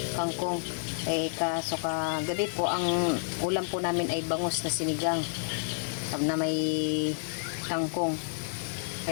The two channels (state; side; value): silent; right; digital silence